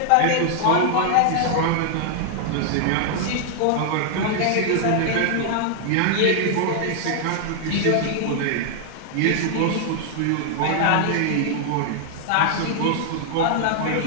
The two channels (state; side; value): different; both; correlation 0.00